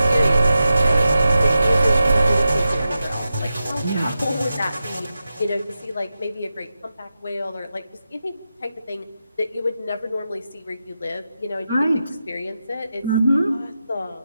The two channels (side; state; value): both; inverted; correlation -0.91